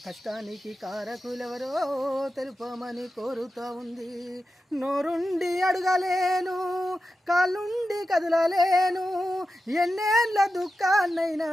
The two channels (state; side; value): normal; both; correlation 0.91